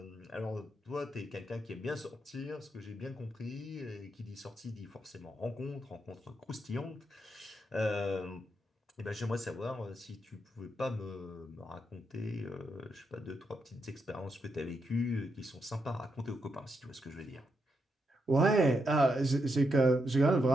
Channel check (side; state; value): both; normal; correlation 0.82